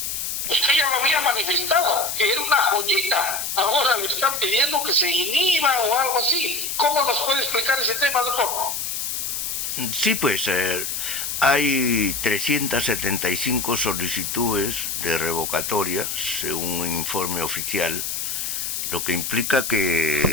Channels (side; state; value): left; noise; hiss, 3 dB below the sound